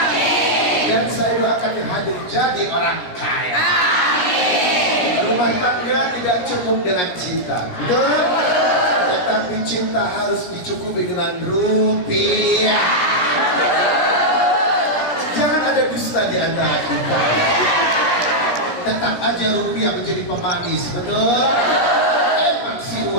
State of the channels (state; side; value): late; right; 17 ms